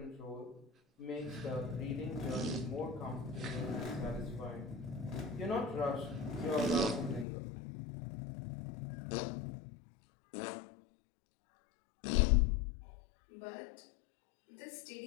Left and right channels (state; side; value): drops out; right; at 7.2 s